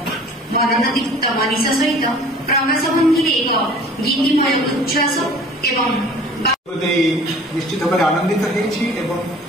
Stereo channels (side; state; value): both; normal; correlation 0.48